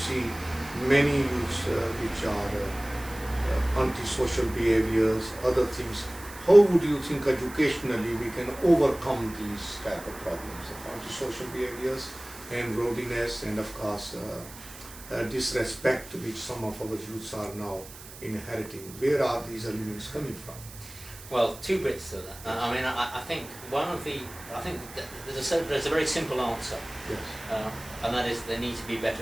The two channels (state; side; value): noise; right; hiss, 16 dB below the sound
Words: many youths which are antisocial behaviors, other things. How would you think educationally we can overcome these type of problems of antisocial behaviors and rowdiness and of course disrespect which some of our youths are now inheriting? Where are these elements coming from? Well, two bits to that. I mean, I think there's a very simple answer. Yes. And that is, there need to be